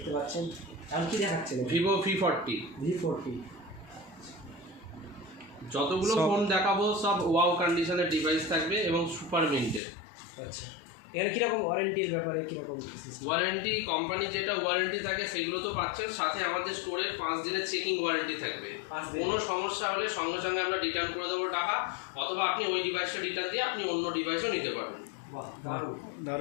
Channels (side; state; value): right; drops out; at 9.8 s